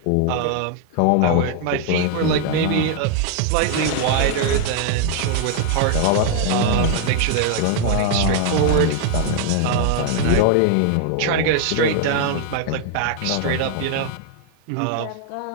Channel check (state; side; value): different; both; correlation 0.00